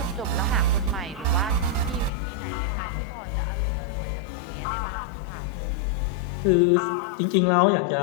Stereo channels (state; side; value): drops out; right; at 2.1 s